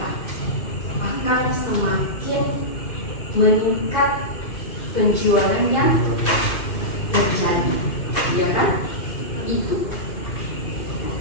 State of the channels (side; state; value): right; late; 2.5 ms